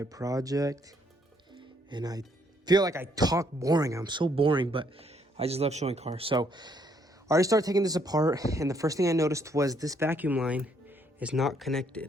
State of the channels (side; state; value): both; normal; correlation 0.69